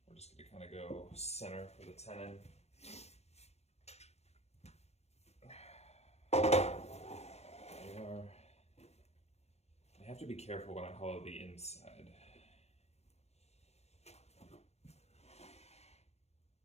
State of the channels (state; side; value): late; right; 0.31 ms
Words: we're just gonna kind of go center for the tenon. have to be careful when I hollow the inside.